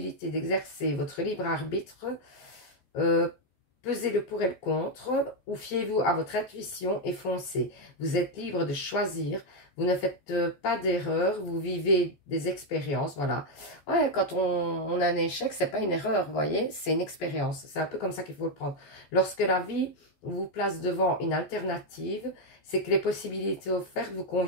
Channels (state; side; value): late; right; 14 ms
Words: d'exercer votre libre arbitre. Pesez le pour et le contre, ou fiez-vous à votre intuition et foncez. Vous êtes libre de choisir, vous ne faites pas d'erreur, vous vivez des expériences, voilà. Ouais, quand on a un échec, c'est pas une erreur, vous voyez, c'est une expérience. C'est un peu comme ça qu'il faut le prendre. Lorsque la vie vous place devant une alternative, c'est que les possibilités offertes vous